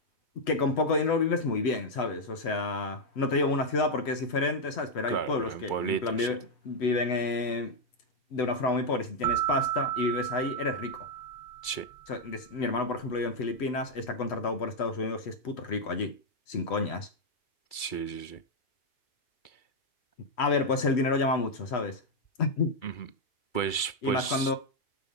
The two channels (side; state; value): right; late; 2.3 ms